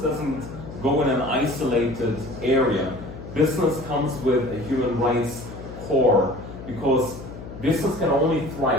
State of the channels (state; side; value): noise; left; hum, 13 dB below the sound